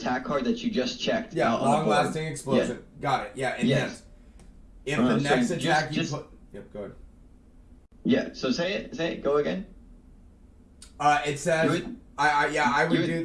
card that you just checked? Yeah, long-lasting explosion. Yeah. Got it. Yeah, enhance. Yes. If the next attack you put. Yep. Go ahead. Yeah. So say it. Go again. It says. I would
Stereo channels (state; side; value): identical; both; correlation 1.00